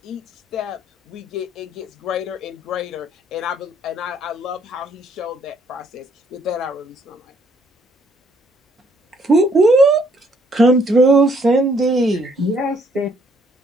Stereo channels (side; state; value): both; normal; correlation 0.66